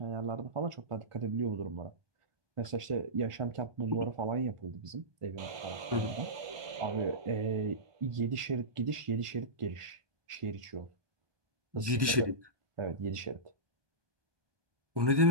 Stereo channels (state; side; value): late; left; 1.1 ms